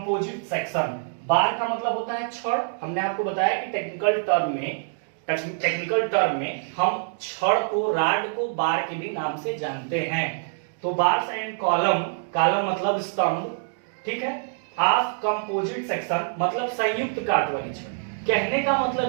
section. Bar का मतलब होता है छड़, हमने आपको बताया कि टेक्निकल टर्म में हम छड़ को, राड को बार के भी नाम से जानते हैं। तो बार्स एंड कॉलम, कॉलम मतलब स्तंभ, ठीक है, ऑफ कंपोजिट सेक्शन मतलब संयुक्त काट वाली छड़। कहने का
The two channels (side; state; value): left; silent; digital silence